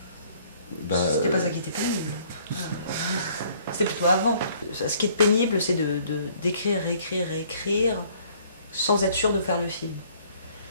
Bah, c'était pas ça qui était pénible. C'était plutôt avant. Ce qui est pénible, c'est d'écrire, réécrire, sans être sûr de faire le film.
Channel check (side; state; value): both; inverted; correlation -0.60